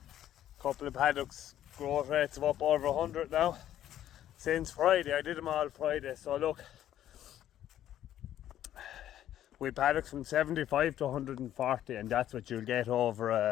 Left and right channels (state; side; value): quieter; right; 11.8 dB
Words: Couple of paddocks, growth rates of up over 100 now. Since Friday, I did them all Friday, so look. We paddocks from 75 to 140, and that's what you'll get over